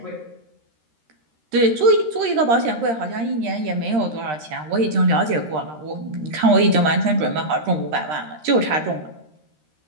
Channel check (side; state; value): left; late; 13 ms